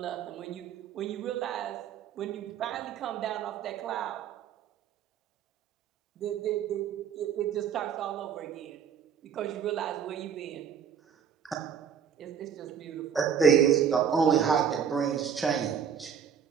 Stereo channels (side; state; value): left; quieter; 7.7 dB